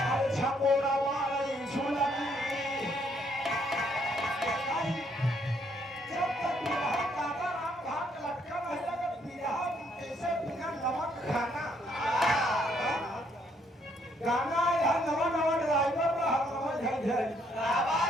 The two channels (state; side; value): normal; both; correlation 0.69